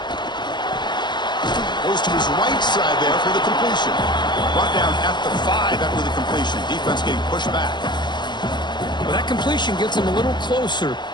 Goes to his right side there for the completion. Brought down at the 5 after the completion. Defense getting pushed back. Well, that completion gets him a little closer.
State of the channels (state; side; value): late; right; 0.21 ms